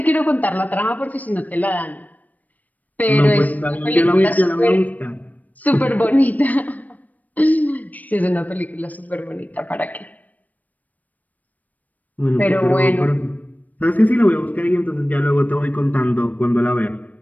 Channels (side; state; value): right; late; 0.077 ms